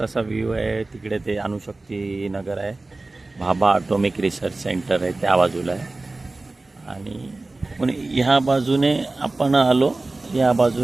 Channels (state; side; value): quieter; left; 3.2 dB